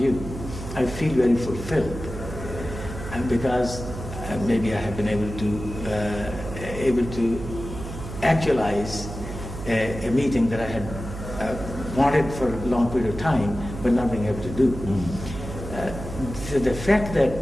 I feel very fulfilled because maybe I have been able to actualize a meeting that I had wanted for a long period of time, but not being able to do. So the fact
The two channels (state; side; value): noise; right; hum, 9 dB below the sound